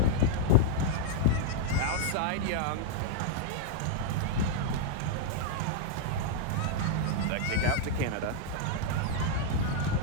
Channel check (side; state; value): both; different; correlation -0.01